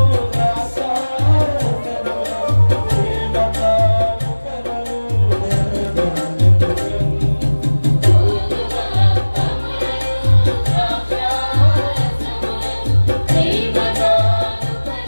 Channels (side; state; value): both; inverted; correlation -1.00